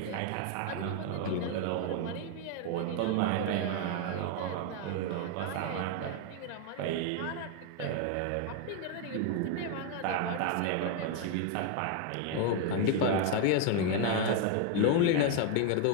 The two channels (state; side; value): different; both; correlation 0.01